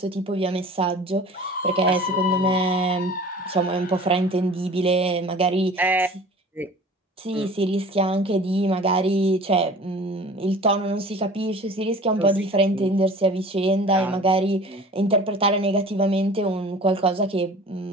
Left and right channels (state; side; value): normal; both; correlation 0.43